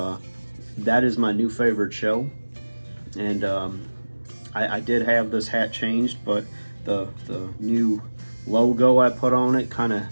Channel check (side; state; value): both; inverted; correlation -1.00